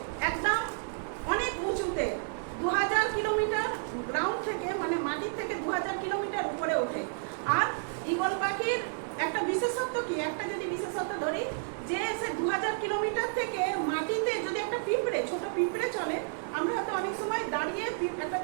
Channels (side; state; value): left; silent; digital silence